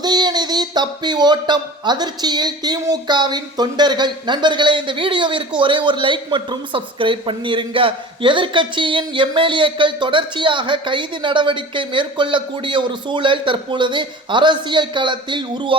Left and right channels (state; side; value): normal; both; correlation 0.38